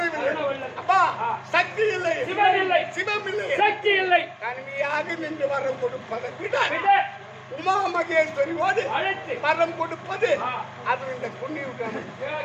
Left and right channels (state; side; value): identical; both; correlation 1.00